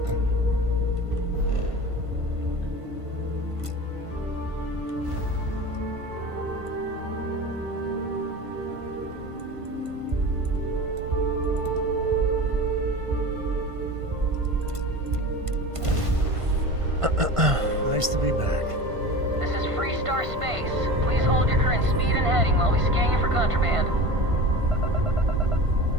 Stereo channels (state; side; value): late; left; 1.5 ms